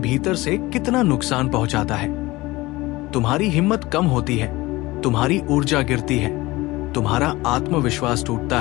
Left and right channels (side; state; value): right; quieter; 20.3 dB